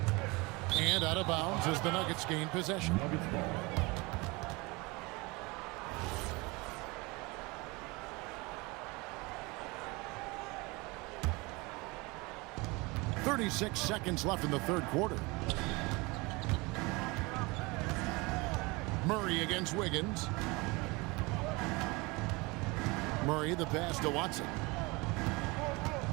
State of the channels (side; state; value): left; quieter; 25.2 dB